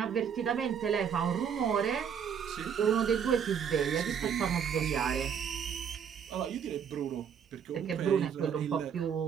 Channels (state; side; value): quieter; left; 7.7 dB